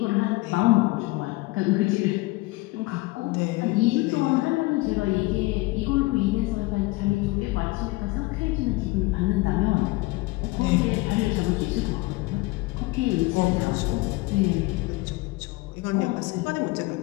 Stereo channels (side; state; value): right; quieter; 21.6 dB